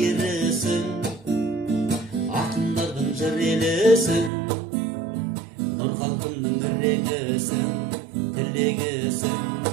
ақындардың жыр елісің, нұр халқымның ірегісің, тілегісің,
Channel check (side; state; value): left; drops out; at 4.3 s